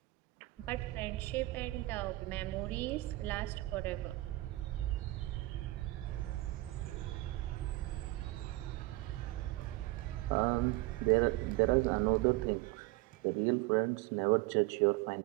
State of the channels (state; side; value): quieter; left; 19.4 dB